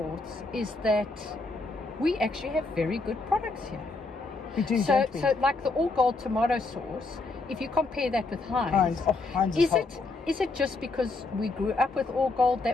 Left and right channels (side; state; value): right; quieter; 3.6 dB